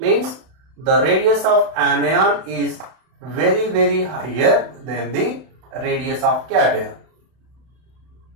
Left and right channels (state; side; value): late; left; 31 ms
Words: the radius of anion is very higher than the radius of cation.